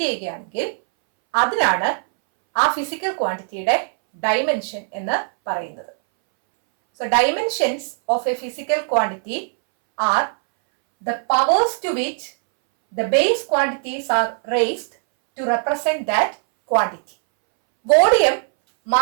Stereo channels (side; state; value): left; silent; 63 dB below the other